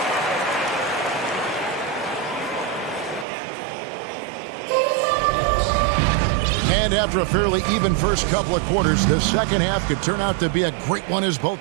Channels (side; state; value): left; drops out; at 3.2 s